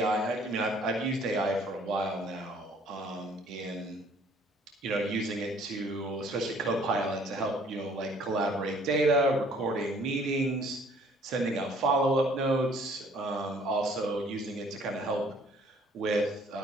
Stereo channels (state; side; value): normal; both; correlation 0.58